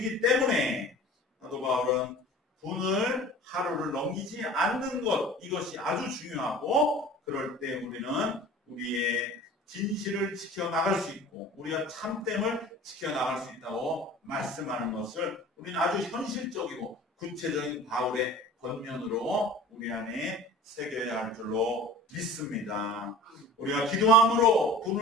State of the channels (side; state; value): both; normal; correlation 0.41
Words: 때문에 사도 바울은 분을 하루를 넘기지 않는 것, 이것이 아주 중요하고, 그럴 때 우리는 우리의 진실을 지켜나갈 수 있고 우리가 참됨을 지켜나갈 수 있다고 말씀하는 것을 우리는 아주 현실적이고 구체적인 바울의 권면으로 우리 안에 새겨야 할 줄로 믿습니다. 우리가 기도함으로